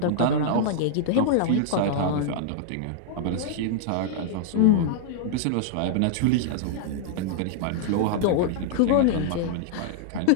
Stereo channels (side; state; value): both; different; correlation -0.01